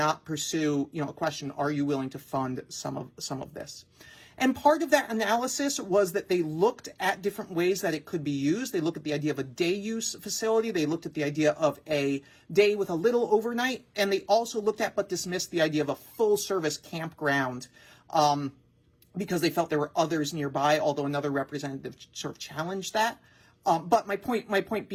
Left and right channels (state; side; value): identical; both; correlation 1.00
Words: pursue, you know, a question, are you willing to fund some of this? And part of that analysis was that they looked at different ways that it could be used. They looked at the idea of a day use facility. They looked at the idea of a day with a little overnight. And they also looked at but dismissed the idea of a full service campground because they felt there were others nearby, although another representative sort of challenged that. But my point